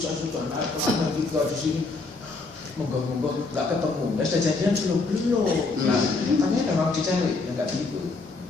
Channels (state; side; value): quieter; right; 3.8 dB